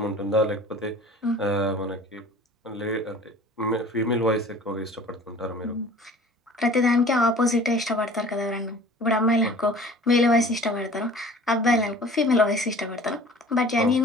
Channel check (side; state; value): both; normal; correlation 0.46